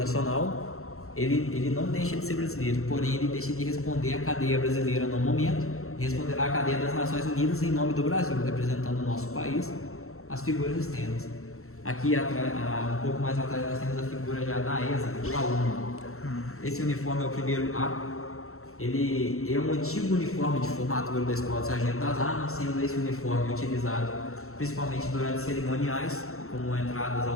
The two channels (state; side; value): late; right; 0.63 ms